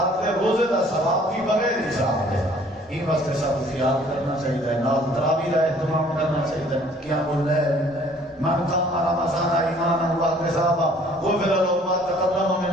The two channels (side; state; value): both; normal; correlation 0.56